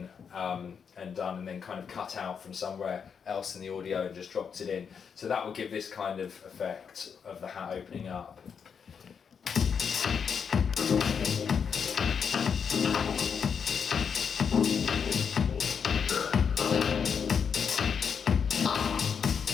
and done and then kind of cut out from somewhere else in the audio and just dropped it in. So that will give this kind of effect of the hat opening up.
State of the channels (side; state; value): right; quieter; 6.7 dB